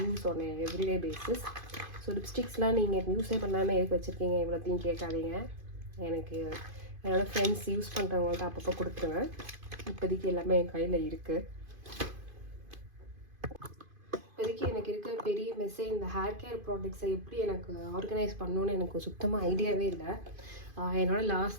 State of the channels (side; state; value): left; late; 2.5 ms